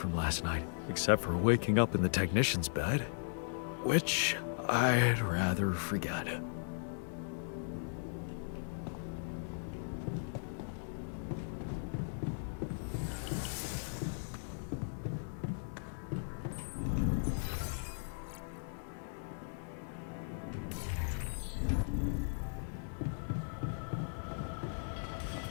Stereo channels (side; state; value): right; silent; digital silence